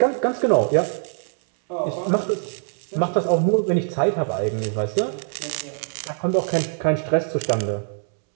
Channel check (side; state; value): left; silent; 63 dB below the other